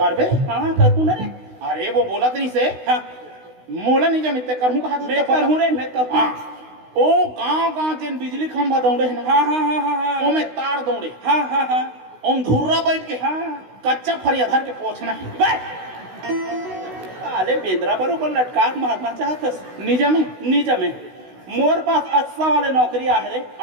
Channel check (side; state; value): left; late; 16 ms